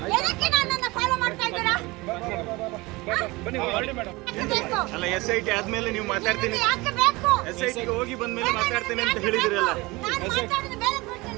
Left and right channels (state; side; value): quieter; left; 22.6 dB